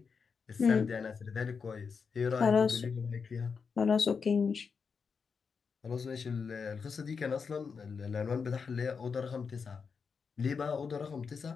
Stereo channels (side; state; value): right; quieter; 5.6 dB